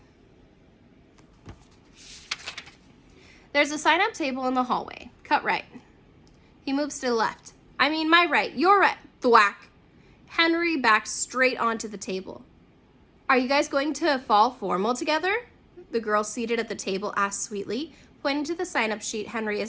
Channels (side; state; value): both; identical; correlation 1.00